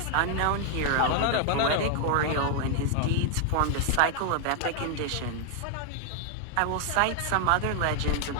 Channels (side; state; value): both; different; correlation 0.00